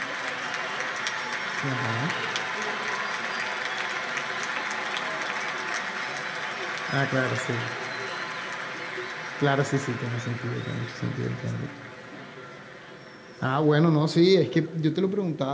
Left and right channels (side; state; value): both; identical; correlation 1.00